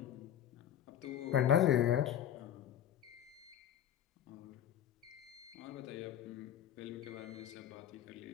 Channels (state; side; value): quieter; right; 10.4 dB